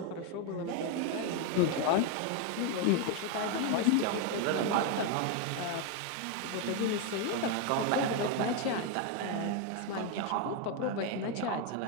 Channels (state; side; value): different; both; correlation 0.01